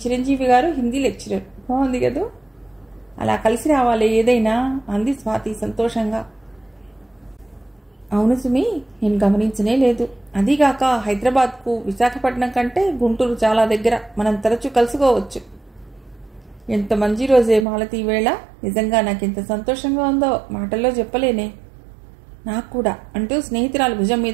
చిరంజీవి గారు హిందీ లెక్చరర్. బాగుంది కదూ? అలా కలిసి రావాలి ఏదైనా అంది స్వాతి సంతోషంగా. అవును సుమి, నేను గమనించనే లేదు. అదీగాక హైదరాబాద్కు విశాఖపట్నం కంటే గుంటూరు చాలా దగ్గర, మనం తరచూ కలుసుకోవచ్చు. ఎంత మంచి రోజే మాలతి వేళ. నిజంగా నాకెంత సంతోషంగా ఉందో మాటల్లో చెప్పలేనే. నాకు కూడా అంటూ స్నేహితురాలు భుజం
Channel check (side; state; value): left; drops out; at 17.7 s